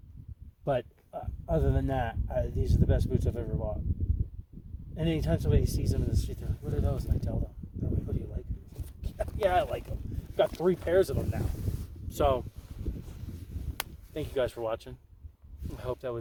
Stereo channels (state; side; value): identical; both; correlation 1.00